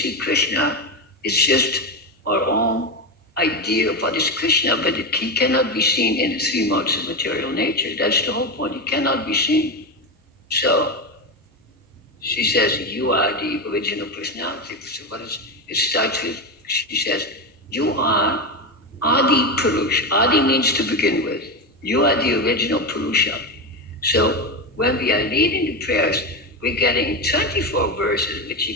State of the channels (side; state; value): both; normal; correlation 0.15